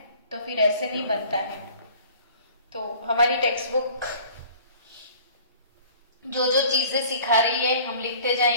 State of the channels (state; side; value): inverted; both; correlation -0.49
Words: तो फिर ऐसे नहीं बनता है। तो हमारी टेक्स्ट बुक जो जो चीजें सिखा रही है हम लिखते